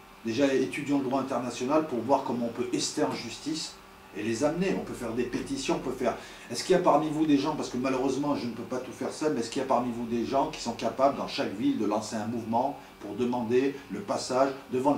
déjà étudions le droit international pour voir comment on peut ester en justice et les amener. On peut faire des pétitions, on peut faire... Est-ce qu'il y a parmi vous des gens, parce que malheureusement je ne peux pas tout faire seul, mais est-ce qu'il y a parmi vous des gens qui sont capables dans chaque ville de lancer un mouvement pour demander le passage devant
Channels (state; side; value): identical; both; correlation 1.00